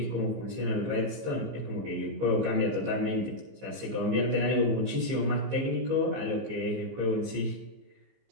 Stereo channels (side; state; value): left; late; 15 ms